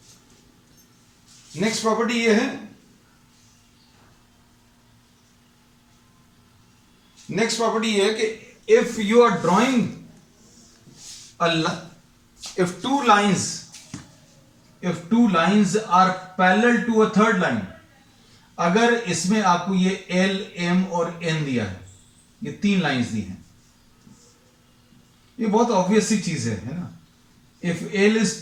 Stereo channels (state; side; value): identical; both; correlation 1.00